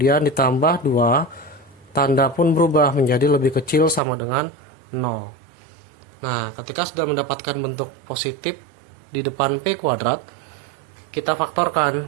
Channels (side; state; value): left; drops out; at 4.0 s